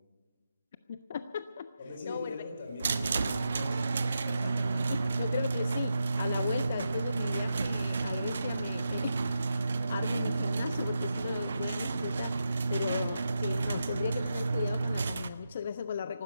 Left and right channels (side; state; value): both; inverted; correlation -0.86